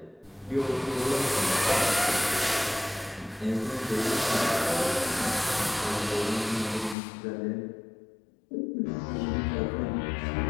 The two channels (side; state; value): right; drops out; at 7.0 s